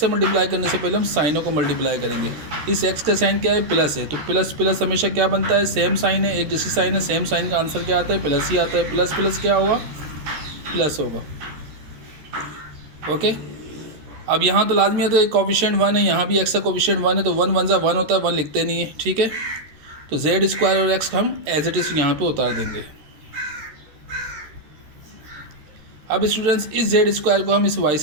मल्टीप्लाई करने से पहले हम साइनों को मल्टीप्लाई करेंगे. इस एक्स का साइन क्या है, प्लस है, तो प्लस प्लस हमेशा क्या बनता है, सेम साइन है, एक जैसी साइन है, सेम साइन का आंसर क्या आता है, प्लस ही आता है. प्लस प्लस क्या होगा, प्लस होगा. ओके, अब यहाँ तो लाजमी है, तो एक कोफिशिएंट 1 है, यहाँ भी एक्स का कोफिशिएंट 1 है, तो 1 1 1 होता है, 1 लिखते नहीं है. ठीक है, तो जेड स्क्वायर और एक्स हम एज इट इज़ यहाँ पे उतार देंगे. अब स्टूडेंट्स इस जेड स्क्वायर को हम इस वाई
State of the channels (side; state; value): left; late; 13 ms